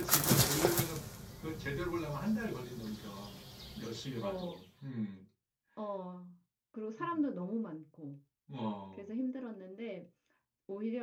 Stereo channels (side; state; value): both; identical; correlation 1.00